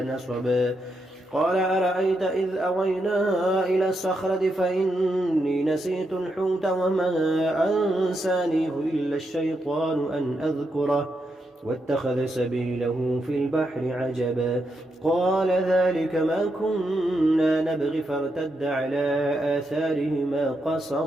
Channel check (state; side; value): normal; both; correlation 0.82